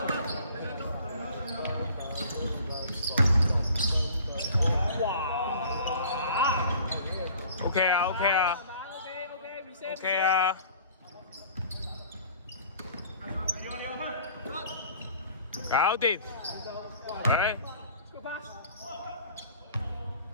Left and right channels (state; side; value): inverted; both; correlation -0.49